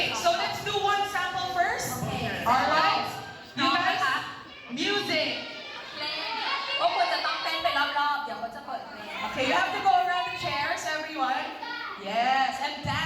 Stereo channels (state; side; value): identical; both; correlation 1.00